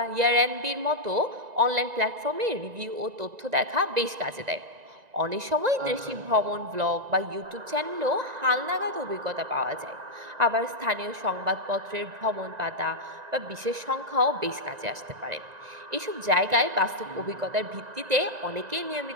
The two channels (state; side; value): late; left; 1.9 ms